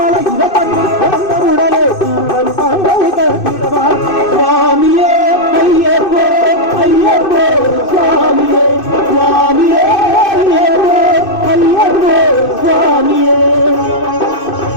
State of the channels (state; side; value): late; right; 2.6 ms